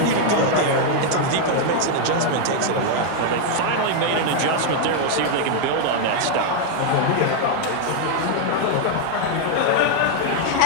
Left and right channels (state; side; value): different; both; correlation 0.00